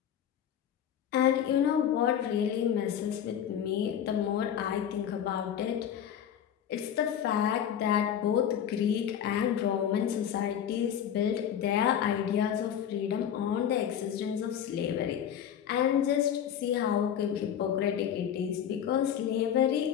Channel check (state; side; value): quieter; right; 9.4 dB